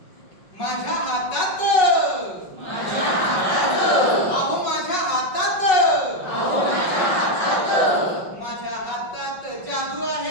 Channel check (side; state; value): right; late; 5.4 ms